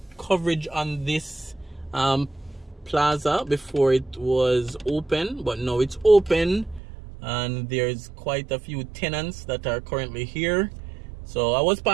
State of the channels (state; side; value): drops out; left; at 6.8 s